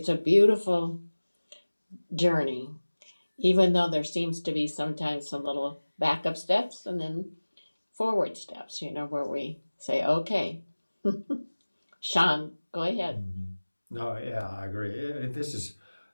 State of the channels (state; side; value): inverted; both; correlation -1.00